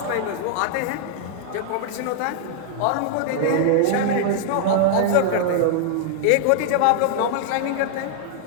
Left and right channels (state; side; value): different; both; correlation -0.01